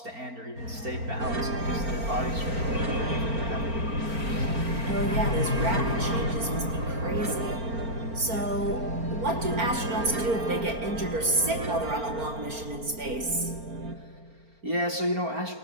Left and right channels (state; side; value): late; left; 4.4 ms